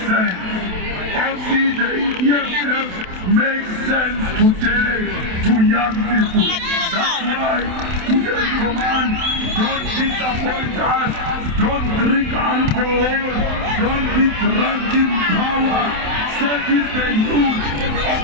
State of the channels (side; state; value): left; late; 27 ms